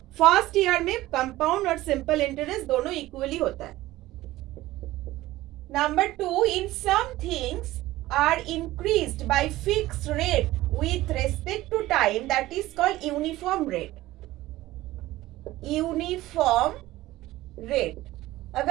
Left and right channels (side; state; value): left; quieter; 16.8 dB